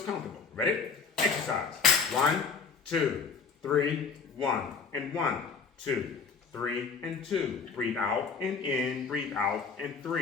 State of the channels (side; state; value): right; quieter; 5.4 dB